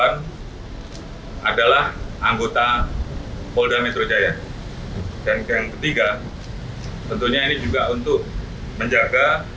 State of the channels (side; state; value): both; identical; correlation 1.00